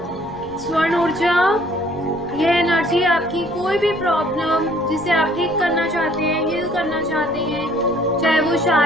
स्वर्ण ऊर्जा, यह एनर्जी आपकी कोई भी प्रॉब्लम जिसे आप ठीक करना चाहते हैं, हील करना चाहते हैं, चाहे वो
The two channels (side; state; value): left; noise; rumble, 21 dB below the sound